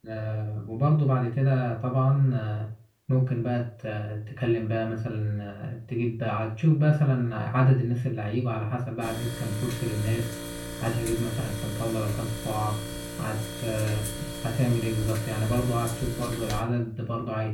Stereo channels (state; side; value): identical; both; correlation 1.00